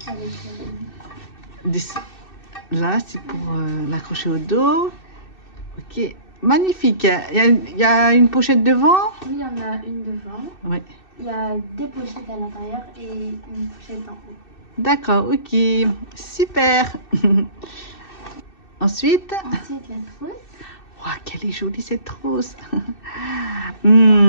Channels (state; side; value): late; right; 2.6 ms